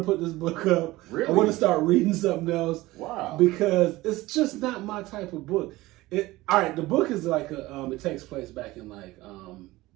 put this book up. Really? I want to start reading something else. Wow. Because it's just not my type of book. The book is like it takes place back in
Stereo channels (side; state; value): left; quieter; 18.9 dB